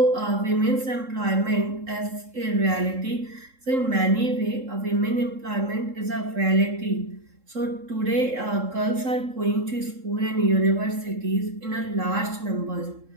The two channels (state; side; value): late; left; 3.7 ms